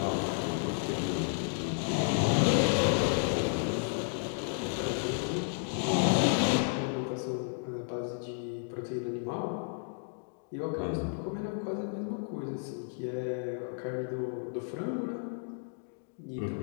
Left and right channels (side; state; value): right; silent; digital silence